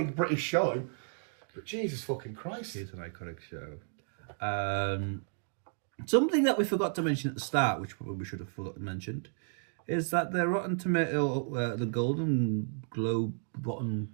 British show. But Jesus fucking Christ. It's an iconic show. Something that we forgot to mention at the start, which probably we should have mentioned, is that the Rotten Tomato, the Golden Globe,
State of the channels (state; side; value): silent; left; digital silence